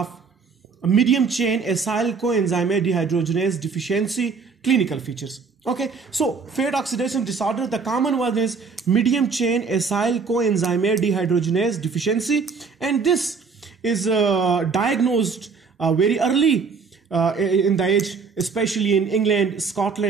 medium chain acyl coenzyme dehydrogenase deficiency clinical features. Okay, so fat oxidation disorder, the common one is medium chain acyl coenzyme dehydrogenase deficiency, and this is diagnosed very early in the age, especially in England,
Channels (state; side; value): quieter; left; 5.1 dB